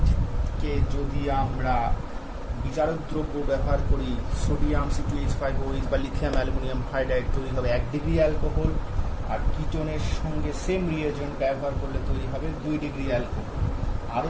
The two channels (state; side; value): identical; both; correlation 1.00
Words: যদি আমরা বিচারক দ্রব্য ব্যবহার করি, সোডিয়াম C2H5OH বা লিথিয়াম অ্যালুমিনিয়াম হাইড্রাইড তৈরি হবে 1 ডিগ্রি অ্যালকোহল, আর কিটোনের সঙ্গে সেম রিয়েজেন্ট ব্যবহার করলে তৈরি হবে 2 ডিগ্রি অ্যালকোহল। আরও